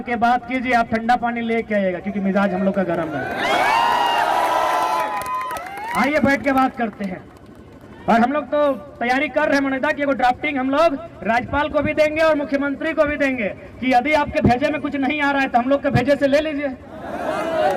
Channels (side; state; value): both; identical; correlation 1.00